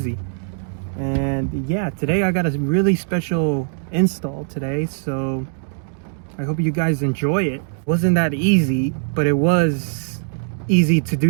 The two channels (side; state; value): left; silent; digital silence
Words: And yeah, today I got a really special install today, so I hope you guys enjoy it. Wasn't that easy, but it was easy to